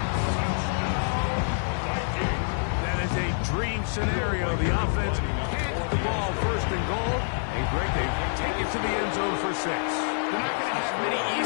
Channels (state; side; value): silent; right; digital silence